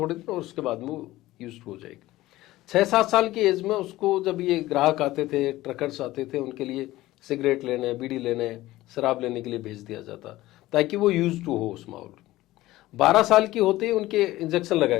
दिन और उसके बाद में वो यूज्ड हो जाएगी। 6-7 साल की एज में उसको जब ये ग्राहक आते थे, ट्रकर्स आते थे, उनके लिए सिगरेट लेने, बीड़ी लेने, शराब लेने के लिए भेज दिया जाता ताकि वो यूज टू हो उस माहौल। 12 साल की होते ही उनके इंजेक्शन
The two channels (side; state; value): right; quieter; 17.0 dB